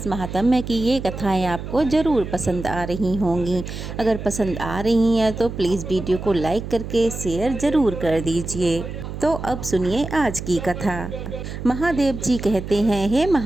महात्म्य की ये कथाएं आपको ज़रूर पसंद आ रही होंगी। अगर पसंद आ रही हैं तो प्लीज़ वीडियो को लाइक करके शेयर ज़रूर कर दीजिए। तो अब सुनिए आज की कथा। महादेव जी कहते हैं, हे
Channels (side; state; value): right; noise; hum, 8 dB below the sound